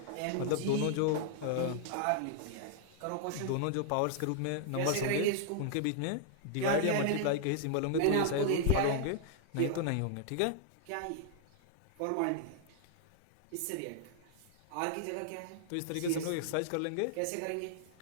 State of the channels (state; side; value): different; both; correlation -0.01